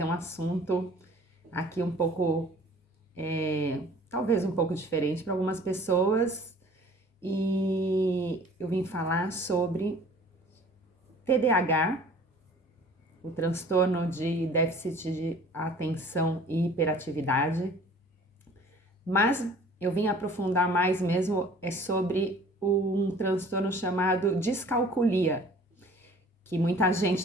um assunto aqui um pouco, talvez um pouco diferente para algumas pessoas, e eu vim falar sobre TDAH, o transtorno de déficit de atenção e hiperatividade, mas eu vim aprofundar mais mesmo sobre um transtorno chamado discalculia, que muita gente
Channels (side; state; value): both; normal; correlation 0.49